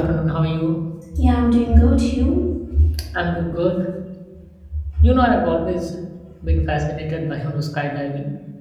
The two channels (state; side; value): identical; both; correlation 1.00